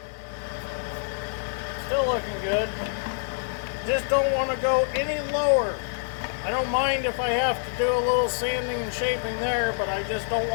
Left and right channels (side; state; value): right; silent; digital silence